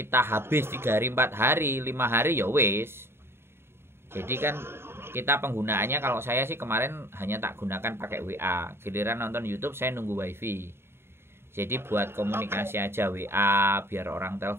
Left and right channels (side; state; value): left; late; 0.12 ms